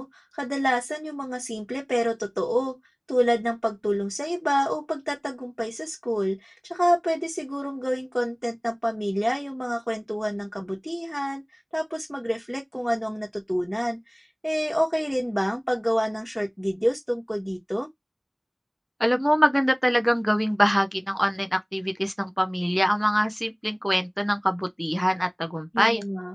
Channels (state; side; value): identical; both; correlation 1.00